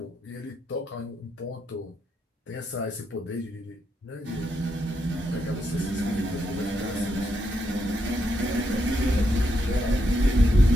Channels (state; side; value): normal; both; correlation 0.81